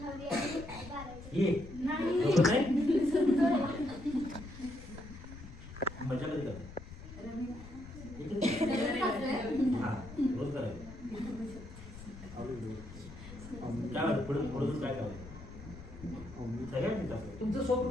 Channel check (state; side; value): noise; left; rumble, 14 dB below the sound